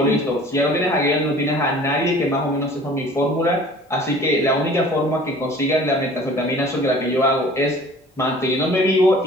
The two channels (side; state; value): both; normal; correlation 0.47